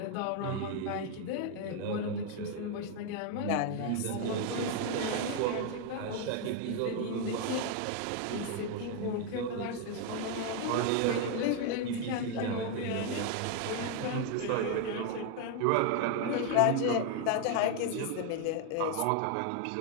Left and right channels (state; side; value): different; both; correlation 0.01